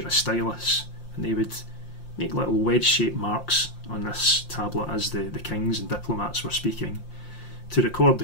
a stylus, and they would make little wedge-shaped marks on this tablet as the kings and diplomats were speaking to record the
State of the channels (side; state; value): right; late; 5.7 ms